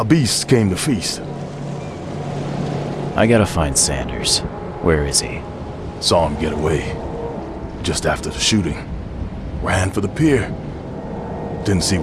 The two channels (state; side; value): identical; both; correlation 1.00